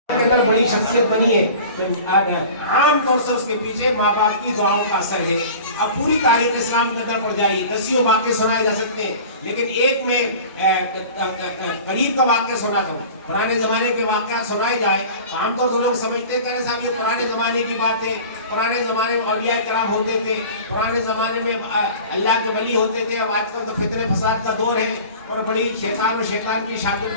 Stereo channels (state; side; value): inverted; both; correlation -0.40